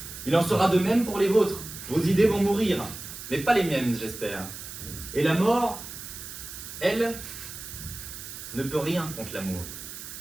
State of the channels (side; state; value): right; noise; hiss, 11 dB below the sound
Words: Il en sera de même pour les vôtres. Vos idées vont mourir, mais pas les miennes, j'espère. Et la mort, elle, ne peut rien contre l'amour.